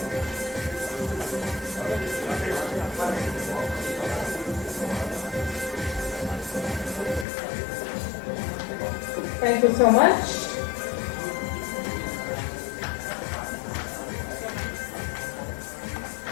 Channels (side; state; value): right; drops out; at 7.2 s